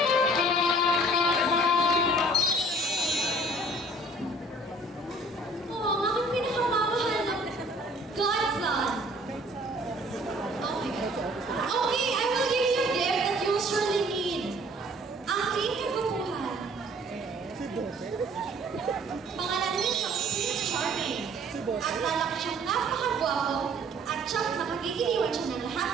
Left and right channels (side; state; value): both; normal; correlation 0.54